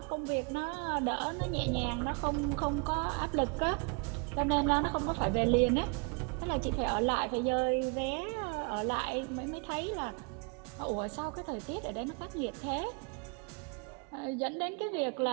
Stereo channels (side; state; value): left; quieter; 34.9 dB